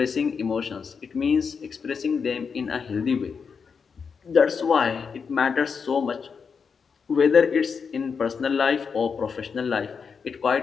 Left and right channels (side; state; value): right; quieter; 5.9 dB